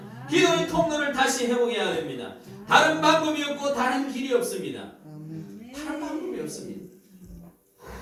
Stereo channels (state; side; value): identical; both; correlation 1.00